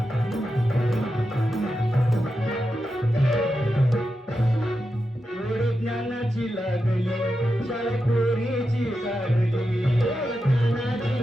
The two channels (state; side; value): normal; both; correlation 0.89